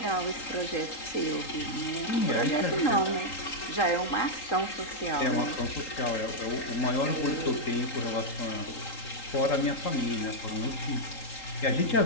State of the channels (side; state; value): right; late; 3.8 ms